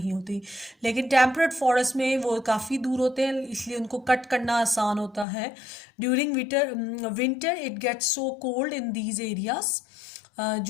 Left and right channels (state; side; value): drops out; right; at 5.2 s